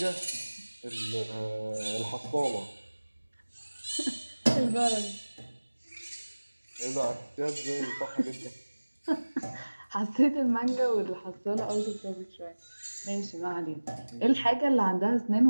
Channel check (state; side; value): inverted; both; correlation -1.00